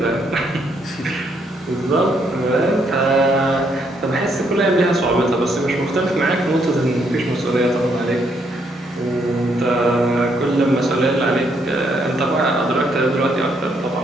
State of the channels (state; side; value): normal; both; correlation 0.73